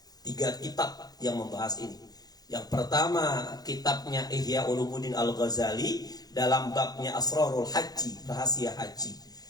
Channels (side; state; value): right; late; 0.19 ms